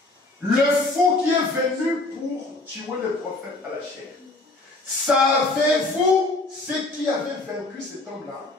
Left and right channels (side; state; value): right; quieter; 3.0 dB